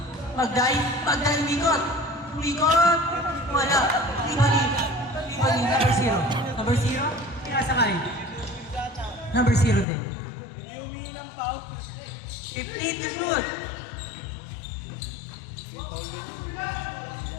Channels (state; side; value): drops out; right; at 9.9 s